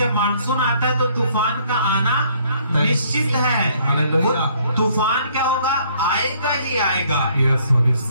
मानसून आता है तो तूफान का आना निश्चित है। हालेलुया। वो तूफान क्या होगा? आएगा ही आएगा। Yes, yes.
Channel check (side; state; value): both; inverted; correlation -0.63